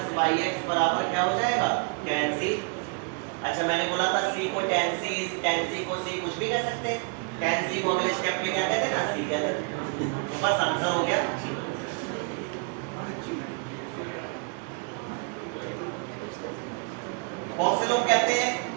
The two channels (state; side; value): quieter; left; 36.3 dB